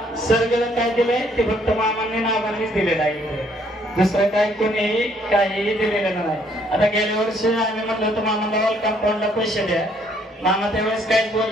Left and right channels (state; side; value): normal; both; correlation 0.66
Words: सगळं काय दिलंय ते फक्त मामांनी नावांनीच दिलेलं आहे. दुसरं काय कोणीही काहीही दिलेलं नाही. आता गेल्या वर्षी आम्ही म्हटलं होतं मामाला वॉल कंपाऊंडला पैसे द्या. मामा त्यावेळेस काहीच